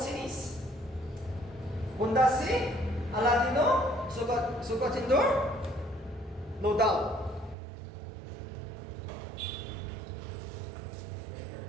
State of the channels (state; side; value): drops out; left; at 7.6 s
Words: cities? Kundasi, Aladino, Sukatindo, no doubt.